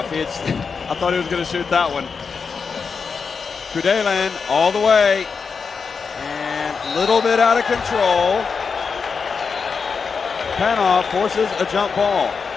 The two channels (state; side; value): quieter; right; 5.4 dB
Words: I thought he was going to shoot that one. Kudelin all the way, and a little bit out of control. Panov forces a jump ball.